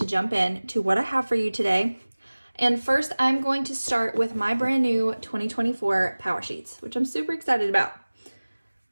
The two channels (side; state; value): both; inverted; correlation -1.00